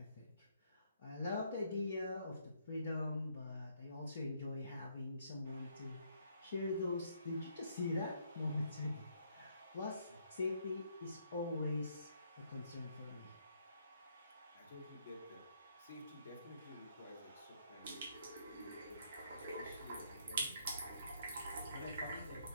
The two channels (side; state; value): both; inverted; correlation -0.70